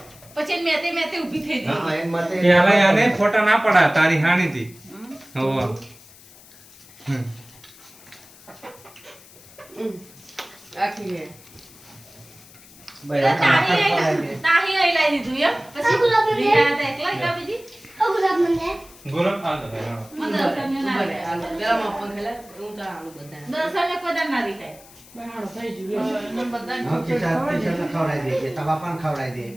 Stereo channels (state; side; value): noise; left; hiss, 22 dB below the sound